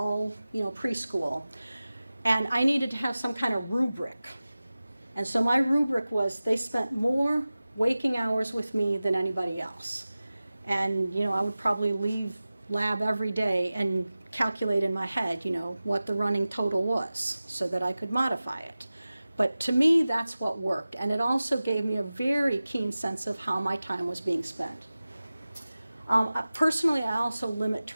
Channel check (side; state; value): both; inverted; correlation -0.97